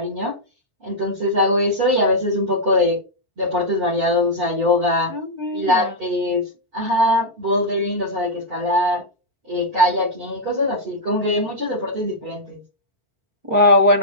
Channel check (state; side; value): late; left; 4.5 ms